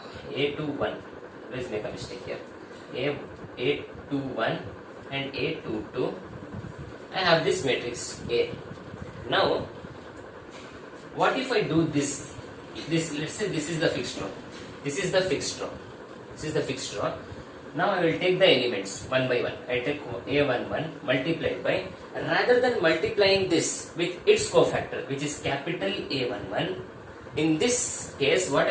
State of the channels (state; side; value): identical; both; correlation 1.00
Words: A21. Let's make a mistake here. A21 and A22. I have this matrix A. Now, what if I do this? Let's say this is the fixed row. Now I will take the elements one by one. I take A11 multiplied by, rather than multiplying this with its cofactor, which is capital A11, in this case what